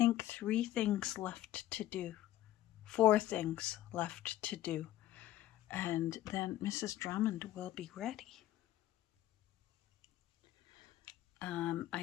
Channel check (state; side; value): quieter; right; 14.2 dB